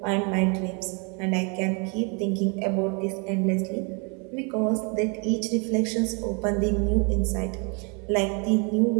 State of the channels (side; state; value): left; quieter; 33.9 dB